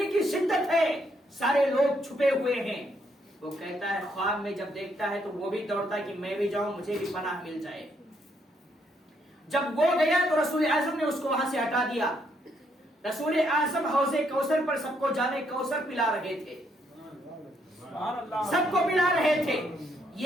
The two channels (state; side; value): normal; both; correlation 0.73